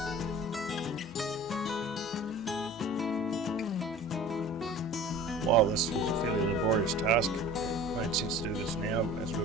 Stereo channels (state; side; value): noise; left; hum, 26 dB below the sound